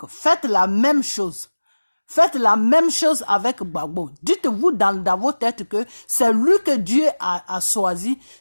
faites la même chose. Faites la même chose avec Gbagbo. Dites-vous dans vos têtes que c'est lui que Dieu a choisi,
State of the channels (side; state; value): both; inverted; correlation -1.00